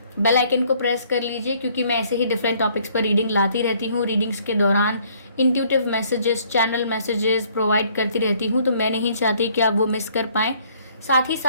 बेल आइकन को प्रेस कर लीजिए, क्योंकि मैं ऐसे ही डिफरेंट टॉपिक्स पर रीडिंग लाती रहती हूँ। रीडिंग्स के दौरान intuitive messages, channel messages provide करती रहती हूँ, तो मैं नहीं चाहती कि आप वो मिस कर पाएँ। साथ ही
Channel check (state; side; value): inverted; both; correlation -0.62